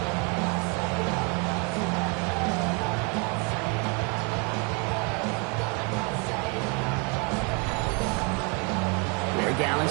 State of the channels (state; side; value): quieter; left; 33.1 dB